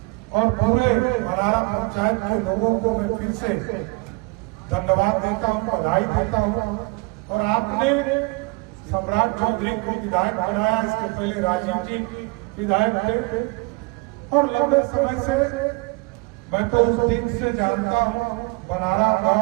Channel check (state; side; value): quieter; left; 27.8 dB